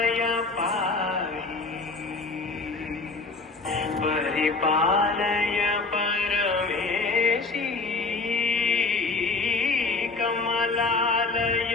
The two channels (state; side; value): quieter; right; 3.7 dB